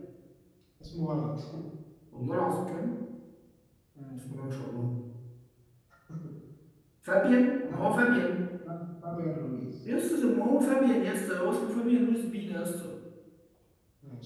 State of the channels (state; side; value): identical; both; correlation 1.00